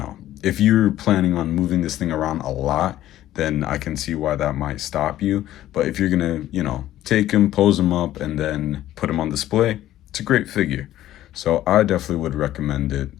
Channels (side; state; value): right; quieter; 13.5 dB